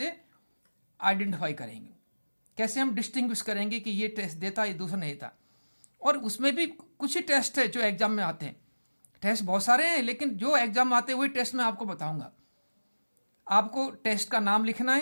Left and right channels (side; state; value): both; inverted; correlation -1.00